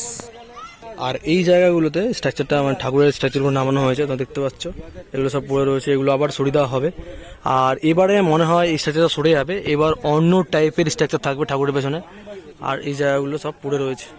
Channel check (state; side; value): identical; both; correlation 1.00